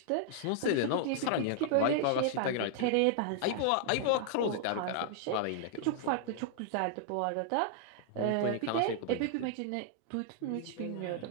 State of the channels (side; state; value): both; different; correlation -0.01